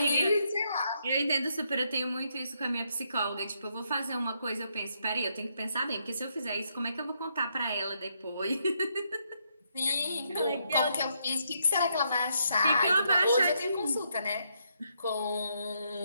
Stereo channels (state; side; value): inverted; both; correlation -0.77